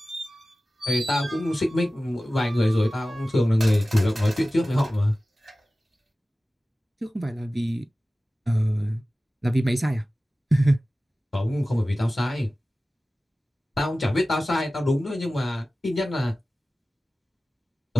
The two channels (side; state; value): both; normal; correlation 0.96